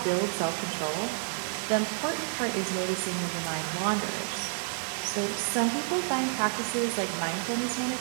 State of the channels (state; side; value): silent; left; 58 dB below the other